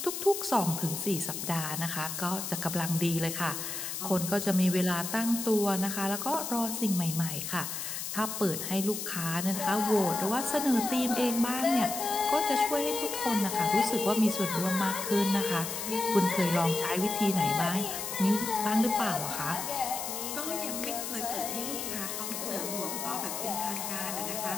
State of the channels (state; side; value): noise; left; hiss, 5 dB below the sound